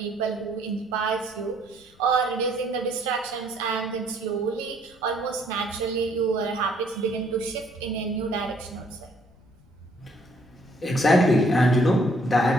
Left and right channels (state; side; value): noise; left; rumble, 29 dB below the sound